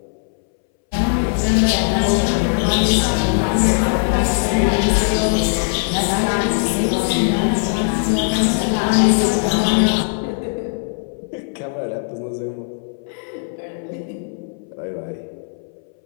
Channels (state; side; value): silent; right; 64 dB below the other